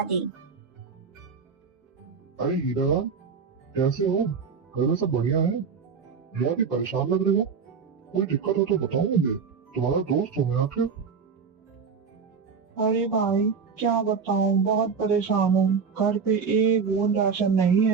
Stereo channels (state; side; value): quieter; left; 5.8 dB